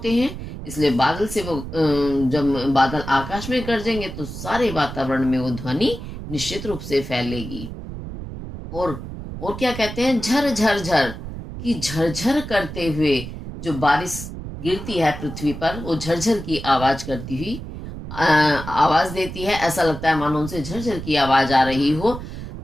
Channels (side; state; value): right; noise; rumble, 9 dB below the sound